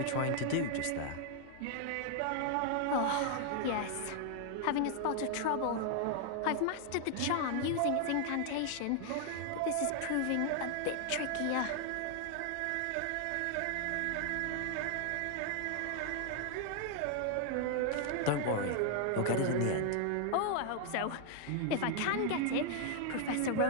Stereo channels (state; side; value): different; both; correlation 0.00